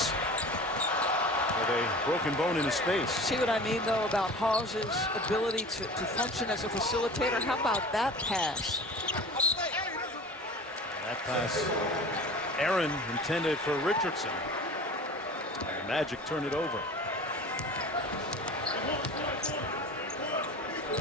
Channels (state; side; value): normal; both; correlation 0.39